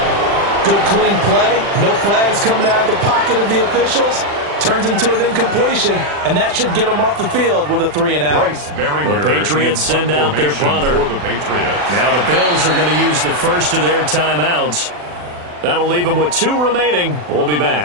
Good clean play. No flags coming out of the pocket of the officials. Turns into an incompletion, and that should get them off the field with a 3 and out. The Patriots send out their punter. Now the Bills are going to use the first of their timeouts. That'll leave them with 2 remaining. We'll be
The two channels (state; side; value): late; left; 40 ms